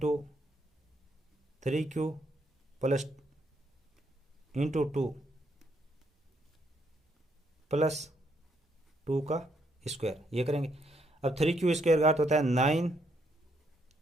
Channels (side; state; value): both; normal; correlation 0.73